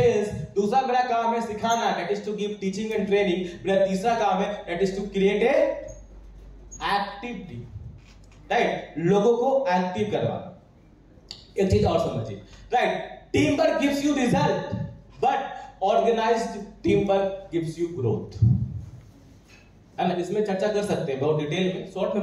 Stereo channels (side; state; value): both; identical; correlation 1.00